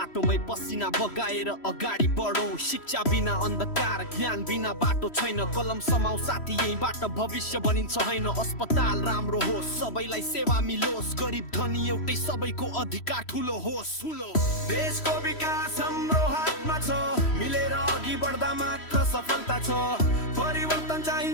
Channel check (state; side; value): late; right; 3.1 ms